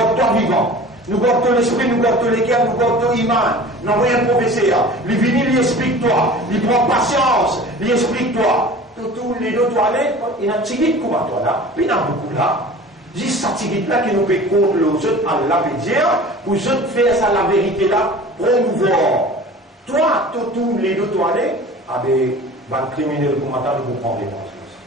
toi vivant nous gardons l'esprit nous gardons les cœurs nous gardons l'iman nous envoyons un professeur lui vient lui explique toi lui prend patience lui explique toi tous les deux toilettes, il y a un tigit comme toi là, puis il y en a beaucoup là. Juste cette tigit là qui nous peut contre les autres, Allah veut dire, pour les autres faire ça la vérité là, promouvoir. Toi, tous les deux toilettes, avec un criminel comme toi, nous prendre les choses.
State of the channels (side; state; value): both; normal; correlation 0.41